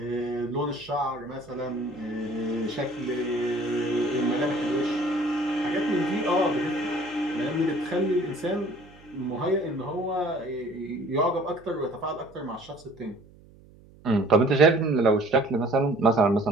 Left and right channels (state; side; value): noise; right; hum, 24 dB below the sound